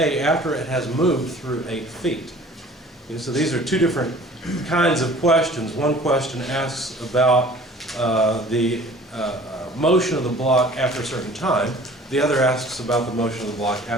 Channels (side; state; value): both; normal; correlation 0.48